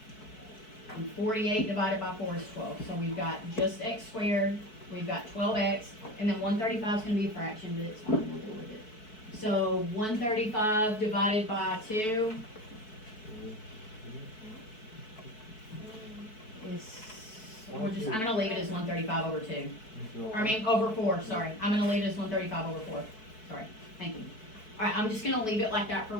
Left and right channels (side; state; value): right; late; 4.6 ms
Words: And 48 divided by 4 is 12. So we've got just x squared we've got 12x, and then 135 is going to be a fraction, but it's fine, we'll deal with it. So 135 divided by 2 is, I'm going to leave it as 135 over 2. Or I mean, over 4, sorry. I'm going to leave it as 135 over 4. Sorry, thank you. All right, I'm just going to leave it like that for